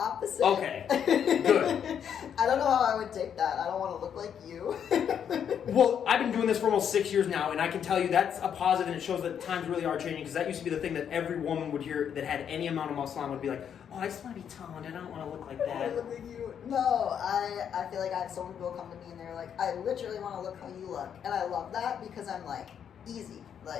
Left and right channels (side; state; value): right; quieter; 8.3 dB